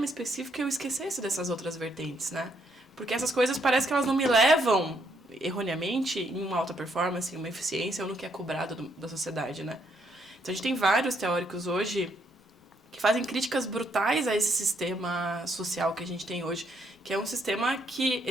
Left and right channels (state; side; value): normal; both; correlation 0.73